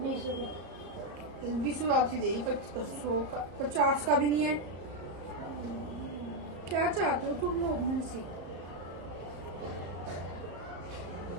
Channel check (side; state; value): left; late; 34 ms